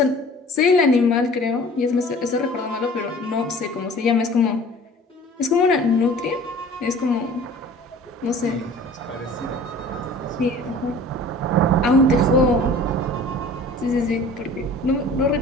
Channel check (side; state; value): both; normal; correlation 0.46